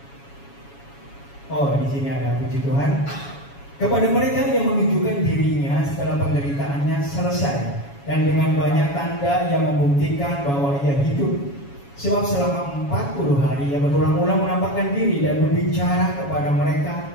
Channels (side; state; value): right; late; 7.2 ms